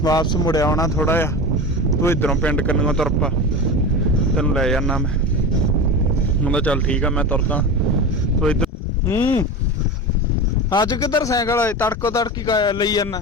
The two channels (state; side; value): normal; both; correlation 0.26